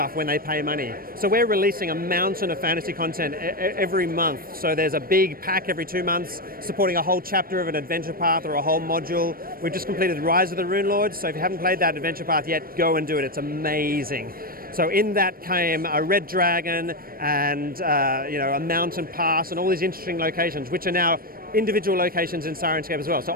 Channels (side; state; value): left; late; 0.43 ms